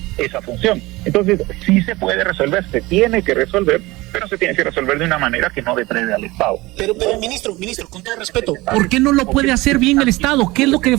función. Entonces sí se puede resolver, se tiene que resolver, pero se tiene que resolver de una manera que no deprede al Estado. Pero ministro, con todo respeto, ¿por qué no lo puede hacer bien el Estado? ¿Qué es lo que le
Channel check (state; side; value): quieter; left; 20.8 dB